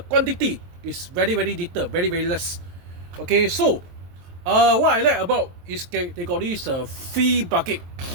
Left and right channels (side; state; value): left; late; 23 ms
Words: quantity is very, very little, very, very less. Okay, so what I like about is they got this free bucket.